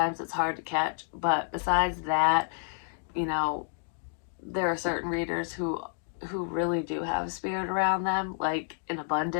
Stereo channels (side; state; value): right; silent; digital silence